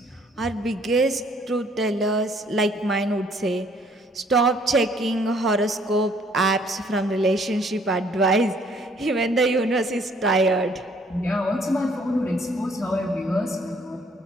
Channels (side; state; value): both; normal; correlation 0.62